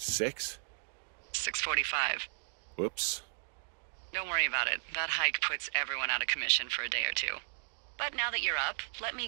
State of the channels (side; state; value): left; silent; digital silence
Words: 6:45. Whoops. Don't worry about it. That hike puts everyone out of commission for a day or two. But now that you're up, let me